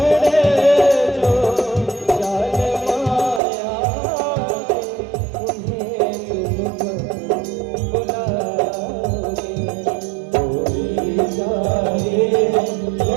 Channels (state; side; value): drops out; left; at 3.4 s